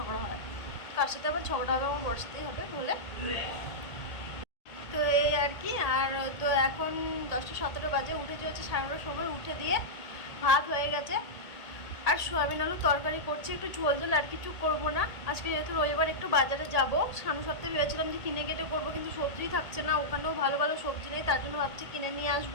হয়, কার সাথে আবার ঝগড়া হবে? আমার বর সাথেই হবে বলে। তো এই আর কি। আর তো এখন 10টা 17 বাজে। উঠেছি হচ্ছে 9:30 সময়। উঠে দিয়ে ভাত হয়ে গেছে আর সোয়াবিন আলু তরকারি করছি। একটু ঝোল ঝোল, আর কিছু করবো না। আজকে যেহেতু রবিবার একটু বাজারে যাব। সামনের সপ্তাহে ভেবেছিলাম যে কিনে কেটে করবো, কিন্তু সবজি থাকছে না, ওখানেও ভালো ভালো সবজি নেই। তার জন্য ভাবছি কিনে নিয়ে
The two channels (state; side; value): late; right; 1.8 ms